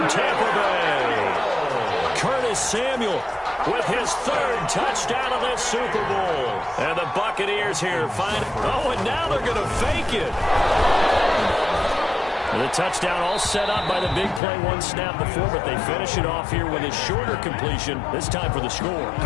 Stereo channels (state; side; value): drops out; right; at 14.4 s